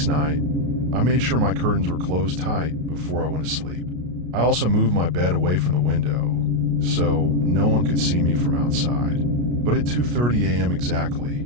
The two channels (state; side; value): late; left; 33 ms